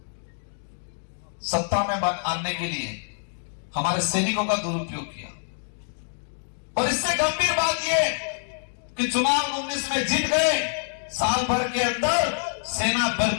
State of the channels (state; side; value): silent; right; digital silence